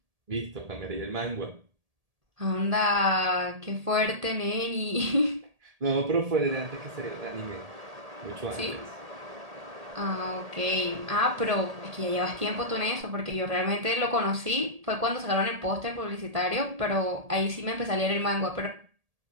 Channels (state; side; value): late; left; 1.7 ms